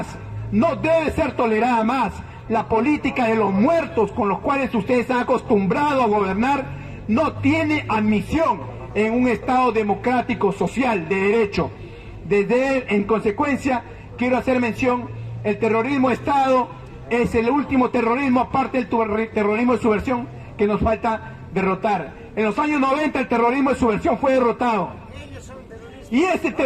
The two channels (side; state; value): both; identical; correlation 1.00